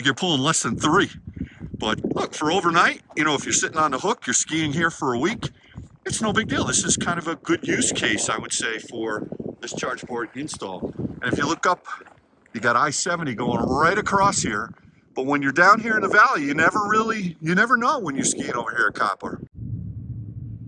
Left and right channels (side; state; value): both; identical; correlation 1.00